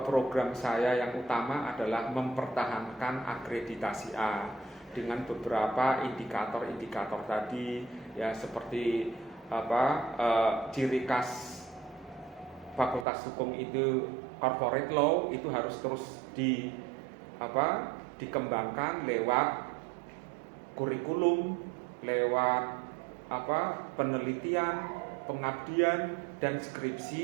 program saya yang utama adalah mempertahankan akreditasi A dengan beberapa indikator-indikator tadi ya, seperti ciri khas Fakultas Hukum itu corporate law itu harus terus dikembangkan lewat kurikulum, lewat penelitian, pengabdian dan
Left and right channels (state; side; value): drops out; left; at 13.1 s